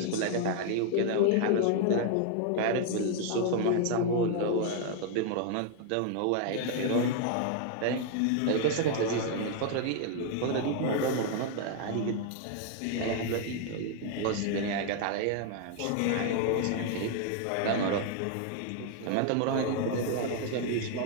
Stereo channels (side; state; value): both; different; correlation 0.00